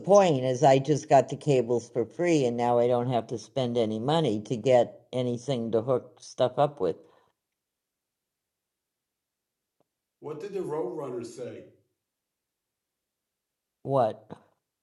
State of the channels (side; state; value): both; identical; correlation 1.00